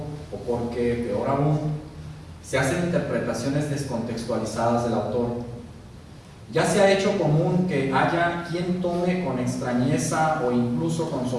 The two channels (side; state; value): both; identical; correlation 1.00